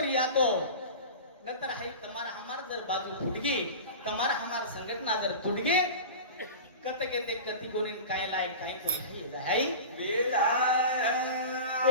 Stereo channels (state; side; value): inverted; both; correlation -0.32